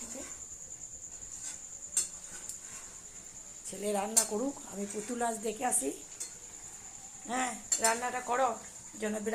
ছেলে রান্না করুক, আমি পুতুল নাচ দেখে আসি। হ্যাঁ, রান্নাটা করো যেন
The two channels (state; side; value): identical; both; correlation 1.00